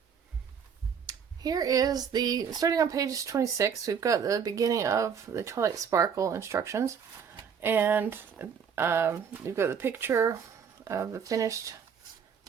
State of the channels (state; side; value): quieter; left; 7.0 dB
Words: Here is starting on page 26, we've got the beginning of the Twilight Sparkle instructions, and we've got the picture of the finished